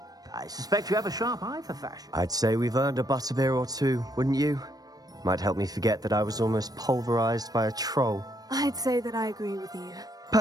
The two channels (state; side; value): late; left; 0.19 ms